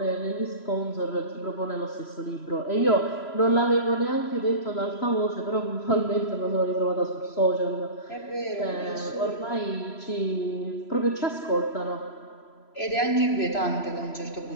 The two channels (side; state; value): right; late; 3.0 ms